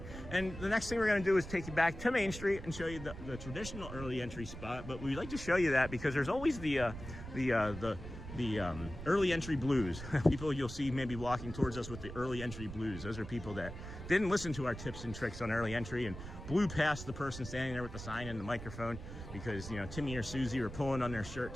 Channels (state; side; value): noise; right; rumble, 10 dB below the sound